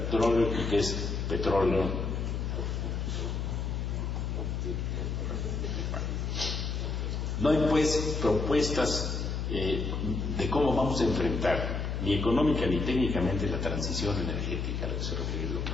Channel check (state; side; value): noise; left; hum, 2 dB below the sound